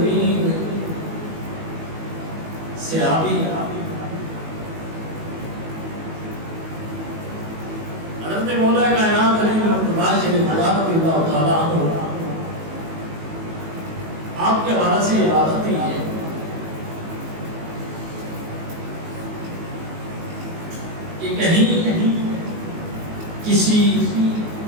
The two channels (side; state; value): left; late; 19 ms